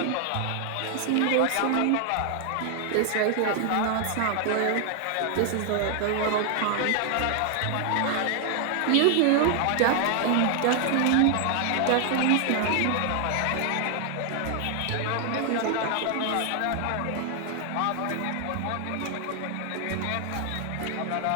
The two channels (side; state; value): both; different; correlation 0.00